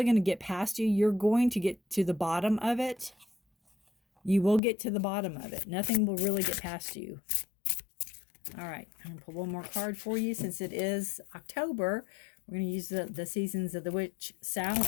going to get past you. You're going to get to the bottom of it. You will get to the bottom of it. Nothing will really get past you. All right, I'm going to pull one more card for you since it is October. We're going to use the Seasons of the Witch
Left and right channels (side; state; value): right; drops out; at 4.6 s